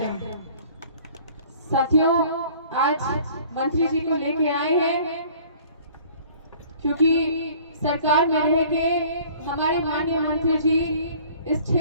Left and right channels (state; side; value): inverted; both; correlation -0.52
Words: हैं। साथियों, आज मंत्री जी को लेके आए हैं क्योंकि सरकार में रह के हमारे माननीय मंत्री जी इस